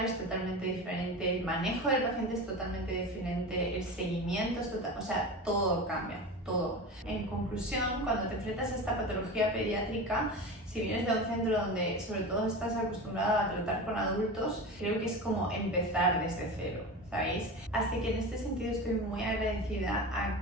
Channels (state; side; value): normal; both; correlation 0.28